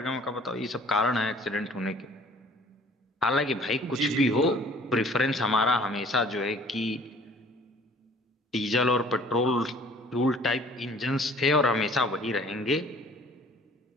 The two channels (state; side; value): normal; both; correlation 0.52